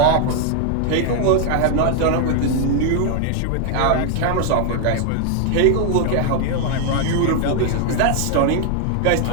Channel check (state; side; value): different; both; correlation 0.00